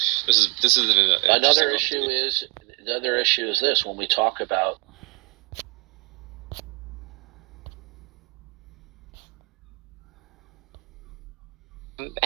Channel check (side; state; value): left; quieter; 32.7 dB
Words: another issue. The other issue is this: when we talk about